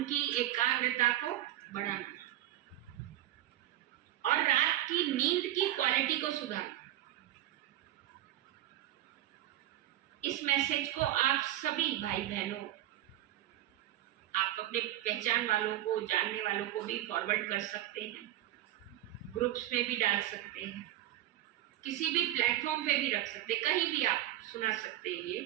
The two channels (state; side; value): quieter; left; 13.9 dB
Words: की एकाग्रता को बढ़ाना और रात की नींद की क्वालिटी को सुधारना। इस मैसेज को आप सभी भाई बहनों, आप अपने पहचान वालों को, जानने वालों को भी फॉरवर्ड कर सकते हैं, ग्रुप्स में भी डाल सकते हैं, किसी भी प्लेटफॉर्म पे भी रख सकते, कहीं भी आप सुना सकते हैं ये